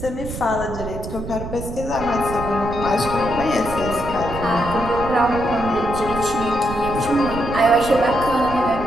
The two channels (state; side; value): noise; right; rumble, 9 dB below the sound